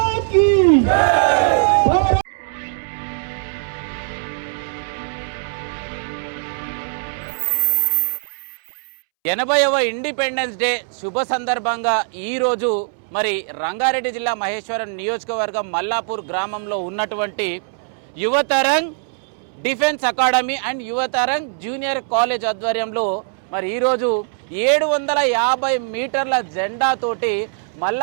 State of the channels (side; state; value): left; silent; 65 dB below the other